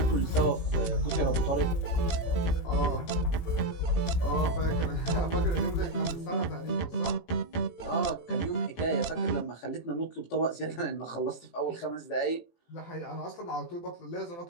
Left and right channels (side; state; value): right; late; 18 ms